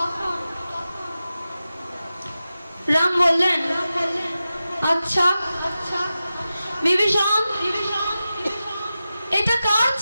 রাম বললেন, আচ্ছা বিভীষণ এটা কার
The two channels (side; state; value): both; inverted; correlation -0.93